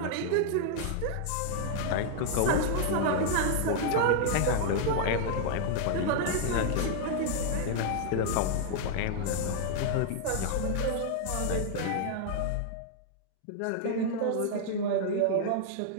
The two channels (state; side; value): different; both; correlation -0.01